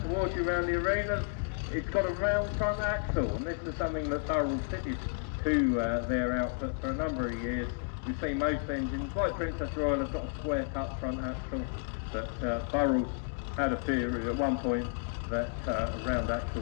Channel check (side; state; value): right; silent; 56 dB below the other